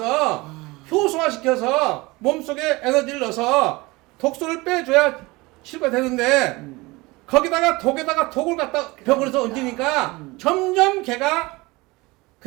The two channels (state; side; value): quieter; left; 22.7 dB